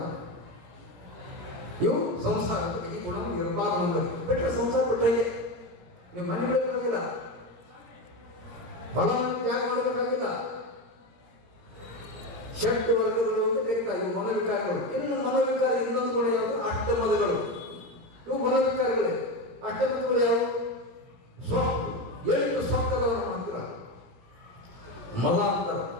ಇವು ಸಂಸಾರ. ಈ ಗುಣ ಇರಬಾರ್ದು ನಮ್ಮಲ್ಲಿ. ಬಿಟ್ಟರೆ ಸಂಸಾರ ಬಿಟ್ಟರೆ ನೀವು ಮನೆ ಬಿಡಬೇಕಾಗಿಲ್ಲ, ಹೊಲ ಮನೆ ತ್ಯಾಗ ಮಾಡಬೇಕಾಗಿಲ್ಲ. ಷಟ್ ವರ್ಗಗಳು ಅಂತ ಕರೀತಾರೆ, ಇವು ಮನೋವಿಕಾರಗಳು. ಇನ್ನು ಮನೋವಿಕಾರ ಇನ್ನೊಂದು ಗುಣ ಯಾವುದು? ಅಷ್ಟಮದಗಳು. ಇವು ಮನೋವಿಕಾರಗಳೇ. ಅಷ್ಟಮದಗಳು ಯಾವುವು? ಸೊಕ್ಕು. 8 ಸೊಕ್ಕದವರ ಹತ್ರ ಮದ ಅಂತರ.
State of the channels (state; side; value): late; left; 17 ms